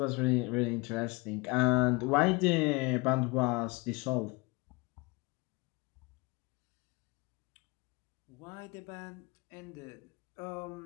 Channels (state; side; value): quieter; right; 26.2 dB